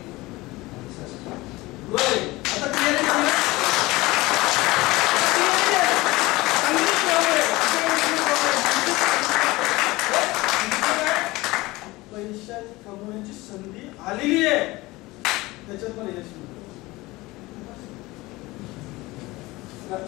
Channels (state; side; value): quieter; right; 20.6 dB